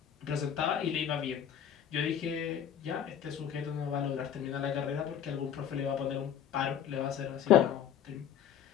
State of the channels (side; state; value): right; quieter; 9.2 dB